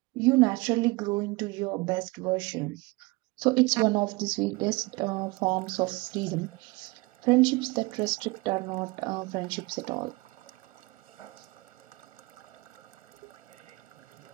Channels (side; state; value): left; quieter; 24.2 dB